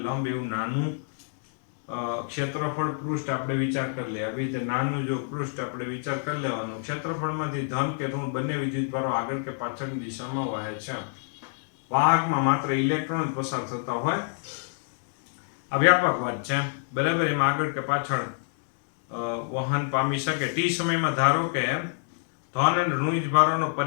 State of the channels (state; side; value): silent; right; digital silence